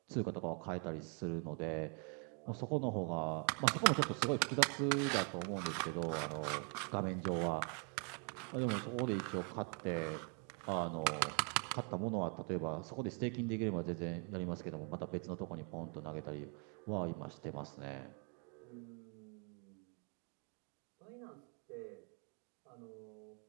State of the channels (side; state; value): left; quieter; 39.6 dB